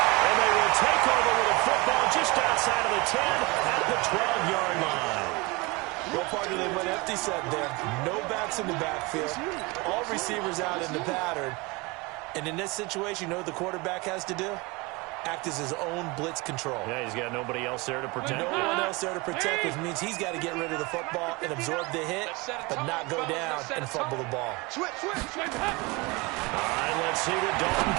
And they will take over with a football just outside of the 10 at the 12-yard line. Well, partner, they went empty set there. No backs in the backfield. All receivers out in the pattern. And in this situation, you know what the quarterback has to do? Act as his own blitz control. Yeah, he's got nobody else there to protect. No one else there to protect, which means he's got to get rid of the football and absorb the hit, but not go down and fumble the ball. All right, let's see what Dalton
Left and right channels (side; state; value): left; quieter; 25.4 dB